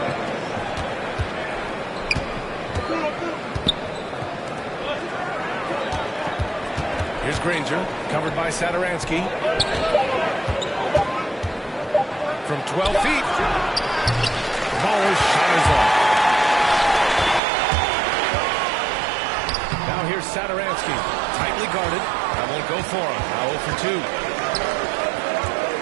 Here's Granger, covered by Sadaransky. From 12 feet. Baller's shot is off. Now here's Sadaransky, tightly guarded. That won't go for him. Now 0 for 2.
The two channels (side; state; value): left; drops out; at 17.4 s